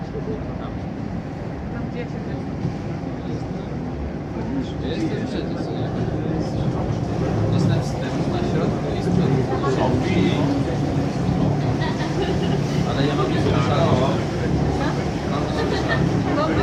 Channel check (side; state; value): both; identical; correlation 1.00